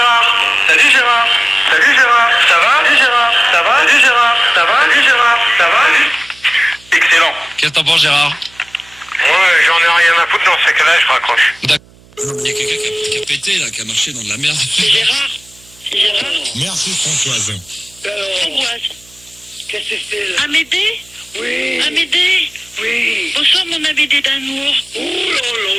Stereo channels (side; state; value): right; noise; hum, 27 dB below the sound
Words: Salut Gérard. Salut Gérard. Ça va? Salut Gérard. Ça va? Salut Gérard. Ça va? Salut Gérard. Ça va? Excellent. Qu'est-ce que t'en penses, Gérard? Ouais, j'en ai rien à foutre dans ce cas-là, je raccroche. Il y a quelqu'un qui a pété, là, qui a marché dans de la merde. C'est Gérard. C'est Gérard. Merci Françoise. Françoise. Qu'est-ce que c'est là? Amédée? Oui. Amédée? Oui. Bonsoir mon Amédée d'amour. Oh là là,